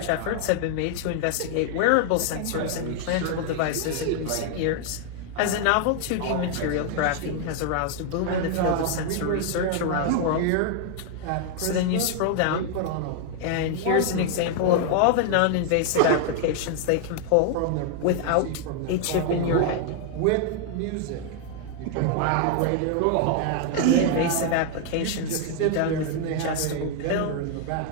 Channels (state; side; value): different; both; correlation 0.00